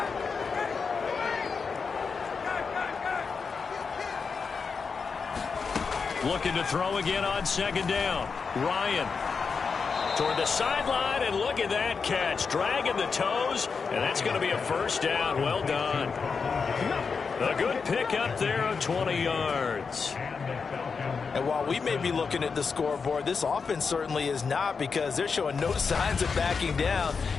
Looking to throw again on 2nd down. Ryan toward the sideline, and look at that catch. Dragging the toes, and that's going to be a 1st down. Well done. A good pick up there of 20 yards. And while we may be looking at the scoreboard, this offense certainly is not, because they're showing no signs of backing down,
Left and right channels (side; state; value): right; quieter; 5.3 dB